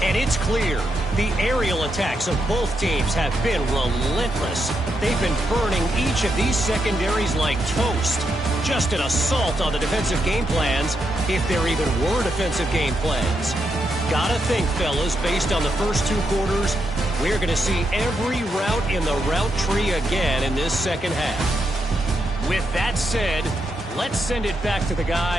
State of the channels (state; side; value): normal; both; correlation 0.82